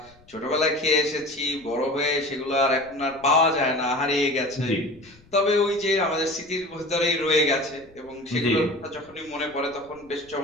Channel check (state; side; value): noise; left; rumble, 27 dB below the sound